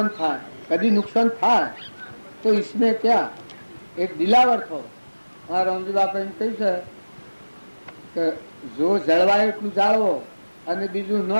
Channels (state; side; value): inverted; both; correlation -1.00